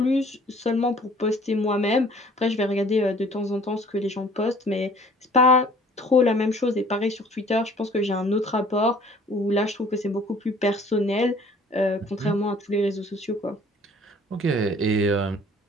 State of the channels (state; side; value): normal; both; correlation 0.53